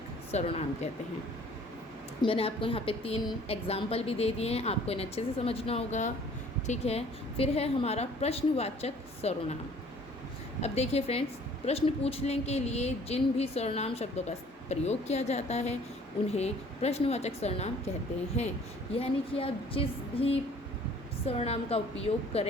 सर्वनाम कहते हैं। मैंने आपको यहाँ पे 3 एग्जाम्पल भी दे दिए हैं, आपको इन्हें अच्छे से समझना होगा, ठीक है। फिर है हमारा प्रश्नवाचक सर्वनाम। अब देखिए फ्रेंड्स, प्रश्न पूछने के लिए जिन भी सर्वनाम शब्दों का प्रयोग किया जाता है उन्हें प्रश्नवाचक सर्वनाम कहते हैं। यानी कि आप जिस भी सर्वनाम का उपयोग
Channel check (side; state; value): both; normal; correlation 0.54